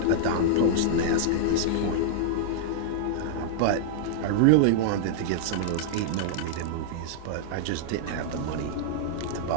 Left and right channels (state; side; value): different; both; correlation -0.01